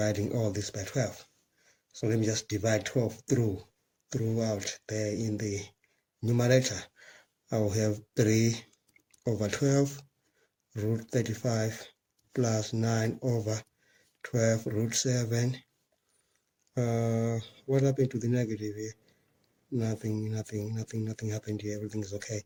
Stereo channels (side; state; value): both; identical; correlation 1.00